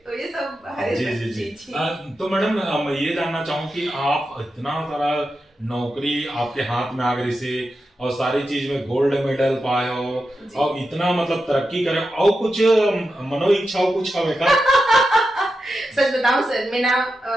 तो ये सब हरे जी जी जी तो मैडम मैं ये जानना चाहूँ कि आप इतना सारा नौकरी आपके हाथ में आ गई से और सारी चीज में गोल्ड मेडल पाए हो जी। और इतना मतलब तरक्की करे और कुछ मनो इच्छाओं कुछ हवे का सच बताऊं सर मैं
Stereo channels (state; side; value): normal; both; correlation 0.89